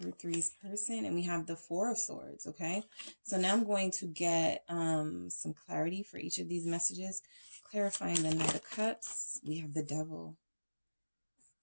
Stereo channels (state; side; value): inverted; both; correlation -1.00